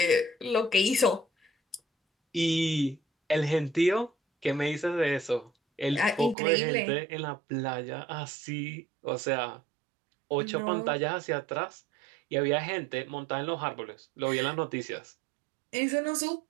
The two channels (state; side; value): drops out; left; at 6.4 s